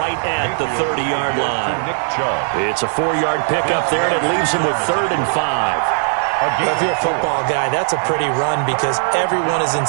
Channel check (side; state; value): left; silent; 63 dB below the other